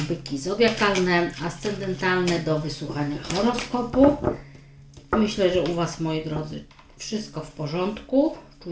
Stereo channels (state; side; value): identical; both; correlation 1.00